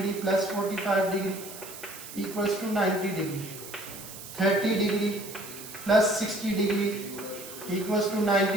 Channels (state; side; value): noise; right; hiss, 13 dB below the sound